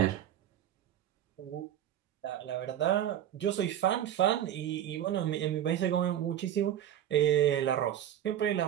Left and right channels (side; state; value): left; quieter; 11.1 dB